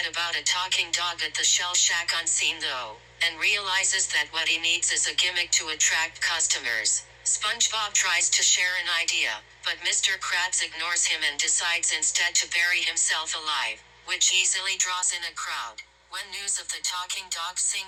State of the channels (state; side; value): identical; both; correlation 1.00